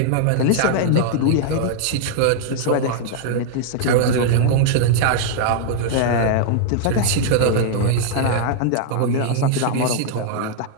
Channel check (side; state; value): both; different; correlation -0.01